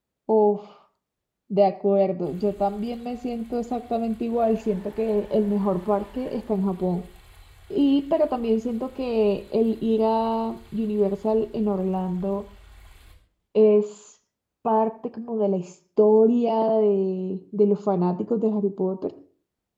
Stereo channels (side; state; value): both; identical; correlation 1.00